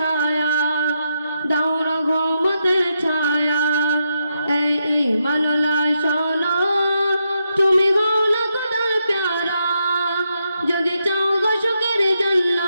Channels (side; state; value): both; inverted; correlation -0.83